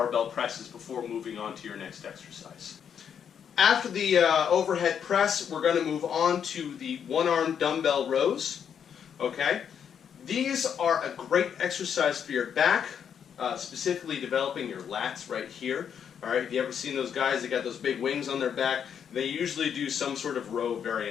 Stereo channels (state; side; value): quieter; right; 8.0 dB